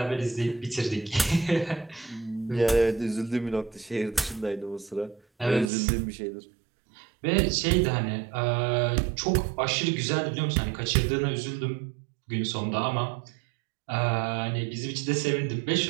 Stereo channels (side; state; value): left; drops out; at 5.7 s